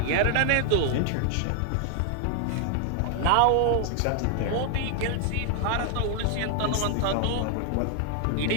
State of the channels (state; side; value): different; both; correlation 0.00